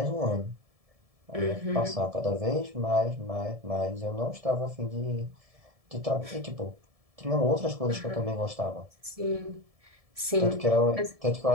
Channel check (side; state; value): left; late; 1.7 ms